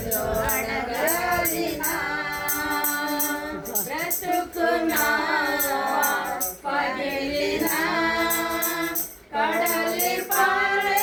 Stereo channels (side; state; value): both; identical; correlation 1.00